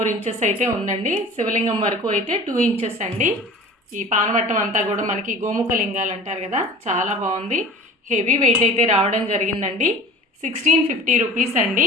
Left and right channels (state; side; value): normal; both; correlation 0.41